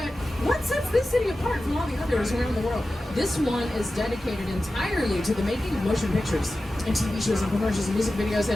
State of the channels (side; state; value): both; normal; correlation 0.94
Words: what sets this city apart from all the others around the world? This one is dedicated entirely to the making of motion pictures and TV shows and commercials and music videos.